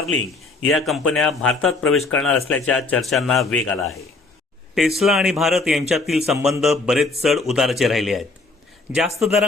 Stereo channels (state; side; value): quieter; right; 3.6 dB